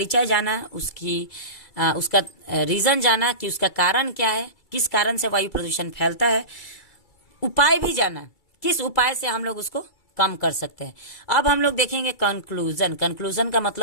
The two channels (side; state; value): right; late; 2.3 ms